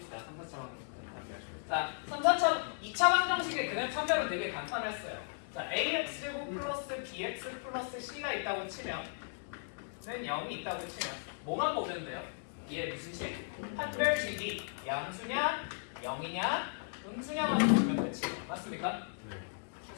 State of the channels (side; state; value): right; silent; digital silence